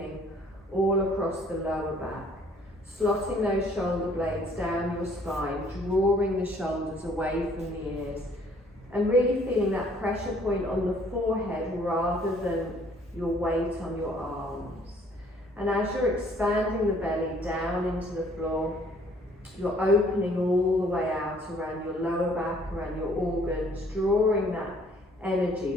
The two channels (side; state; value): both; normal; correlation 0.60